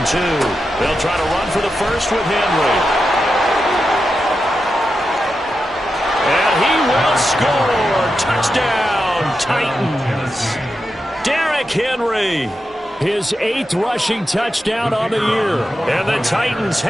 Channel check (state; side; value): normal; both; correlation 0.89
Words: 2. They'll try to run for the first with Henry. And he will score. Touchdown, Titans. Derrick Henry. His 8th rushing touchdown on the year. And the Titans